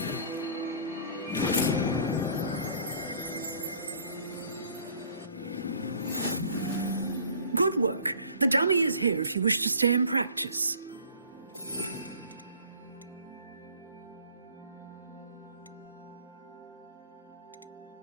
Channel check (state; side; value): inverted; both; correlation -0.51